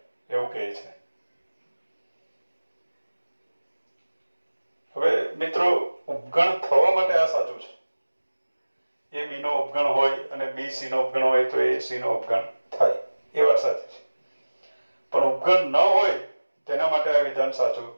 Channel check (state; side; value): inverted; both; correlation -1.00